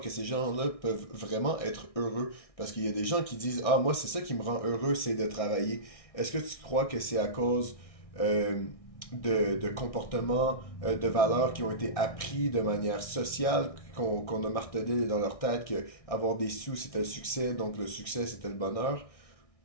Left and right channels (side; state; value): right; late; 1.6 ms